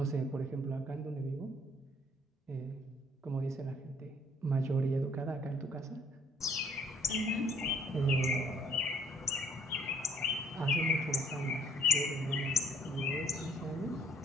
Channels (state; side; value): normal; both; correlation 0.63